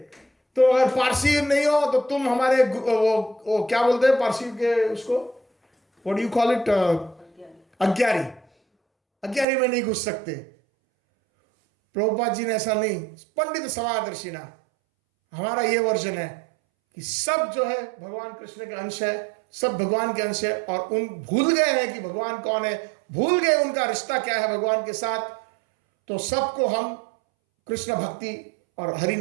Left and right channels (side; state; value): left; drops out; at 9.5 s